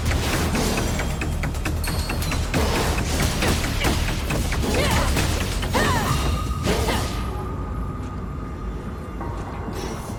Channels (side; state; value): both; identical; correlation 1.00